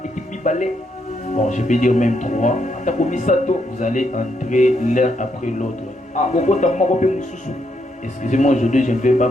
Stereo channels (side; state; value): both; normal; correlation 0.77